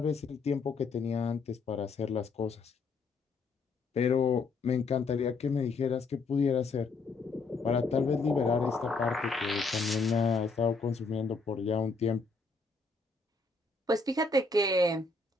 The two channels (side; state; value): right; quieter; 4.0 dB